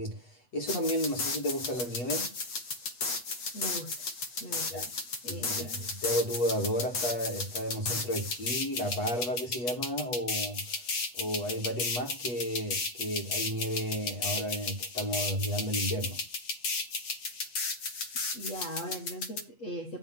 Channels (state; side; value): late; right; 8.2 ms